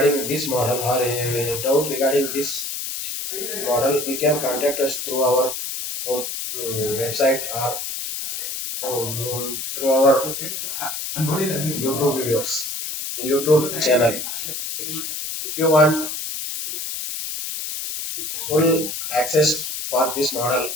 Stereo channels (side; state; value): left; noise; hiss, 5 dB below the sound